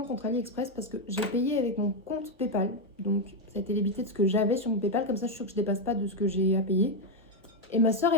contre AliExpress parce que j'ai payé avec mon compte PayPal. Donc, ça a été débité de ce que j'avais sur mon PayPal. Comme ça, je suis sûre que je ne dépasse pas de ce que j'ai à payer. Et ma soeur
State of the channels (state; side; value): normal; both; correlation 0.04